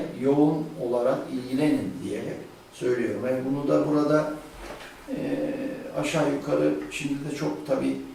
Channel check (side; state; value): both; identical; correlation 1.00